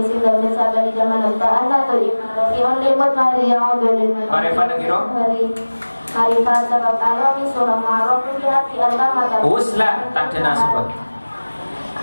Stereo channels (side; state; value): both; inverted; correlation -1.00